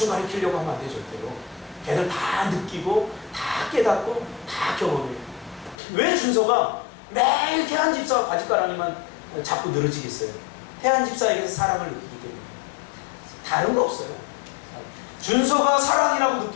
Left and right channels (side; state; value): right; drops out; at 5.8 s